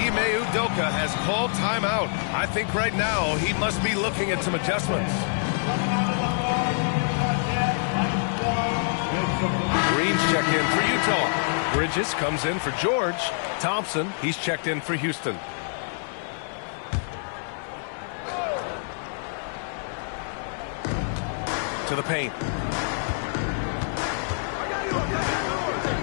Ime Udoka has called timeout. I think right now he must be looking at some adjustments. Green's checked in for Utah. Bridges comes in for George. Thompson, he's checked in for Houston. To the paint.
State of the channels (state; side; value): silent; right; digital silence